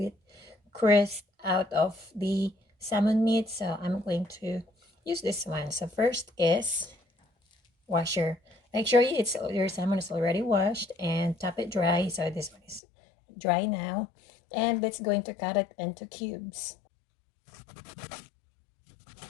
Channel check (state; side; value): drops out; right; at 12.8 s